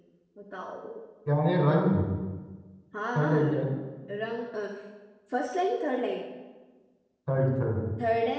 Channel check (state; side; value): identical; both; correlation 1.00